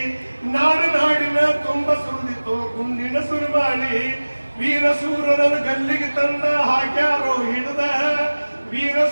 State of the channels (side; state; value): both; inverted; correlation -1.00